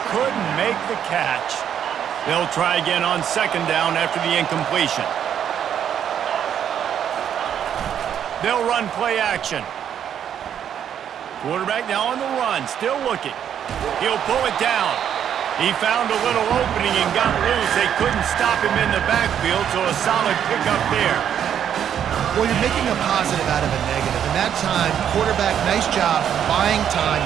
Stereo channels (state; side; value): quieter; left; 9.2 dB